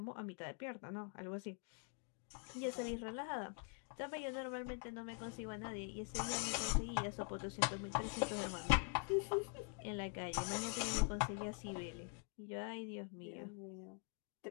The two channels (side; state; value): right; quieter; 37.3 dB